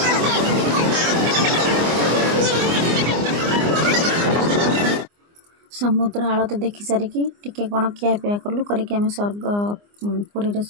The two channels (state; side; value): late; left; 24 ms